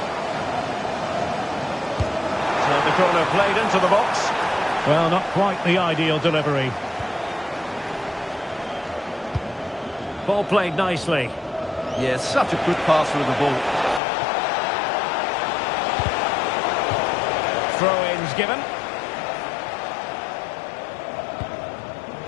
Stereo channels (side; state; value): right; drops out; at 14.0 s